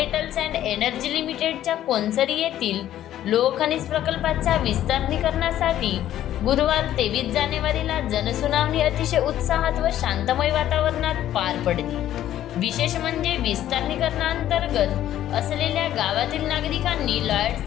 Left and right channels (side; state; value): right; quieter; 12.3 dB